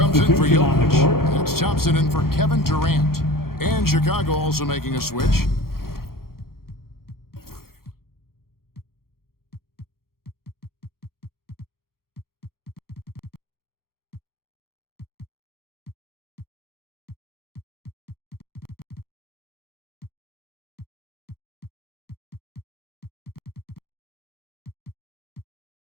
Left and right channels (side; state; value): right; late; 0.93 ms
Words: in for Jokic. That's Thompson in for Kevin Durant. And Chicago also making a switch.